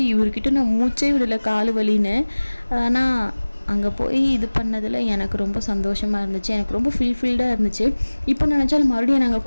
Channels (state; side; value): inverted; both; correlation -1.00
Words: இவர்கிட்ட நான் மூச்சே விடலை கால் வலின்னு. ஆனால் அங்கே போய் இது பண்ணதில் எனக்கு ரொம்ப சந்தோஷமாக இருந்துச்சு, எனக்கு ரொம்ப ஃபுல்ஃபில்டாக இருந்துச்சு. இப்போ நினச்சாலும் மறுபடியும் நாங்கள்